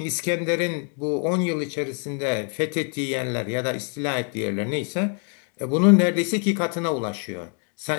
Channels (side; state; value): right; quieter; 39.9 dB